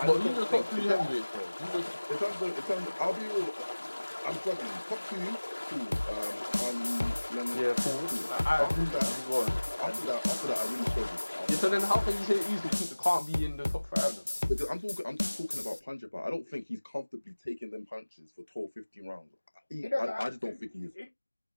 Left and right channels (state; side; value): inverted; both; correlation -1.00